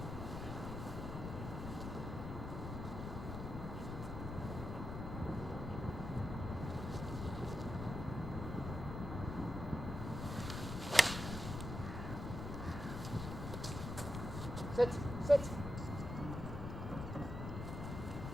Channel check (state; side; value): noise; left; rumble, 5 dB below the sound